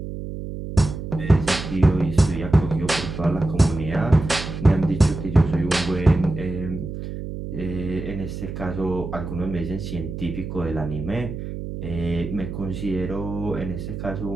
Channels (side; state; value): right; noise; hum, 7 dB below the sound